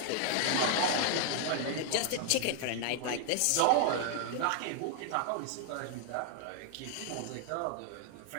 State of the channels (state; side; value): different; both; correlation 0.00